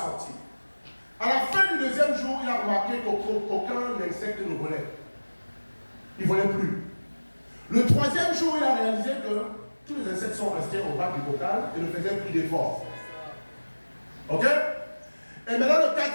À la fin du 2e jour, il a remarqué qu'aucun insecte ne volait. Il ne volait plus. Le 3e jour, il a réalisé que tous les insectes sont restés au bas du bocal et ne faisaient plus d'efforts. Ok? Et maintenant, le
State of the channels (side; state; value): both; inverted; correlation -1.00